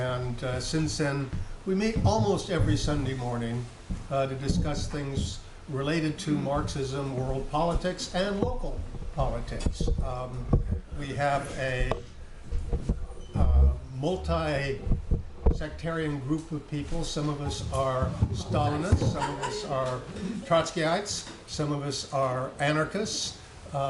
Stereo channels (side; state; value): both; identical; correlation 1.00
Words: since then, we meet almost every Sunday morning to discuss things related to Marxism, world politics, and local politics. We have a multi-sectarian group of people. Some of us are Stalinists, some of us are Trotskyites, some of us are anarchists,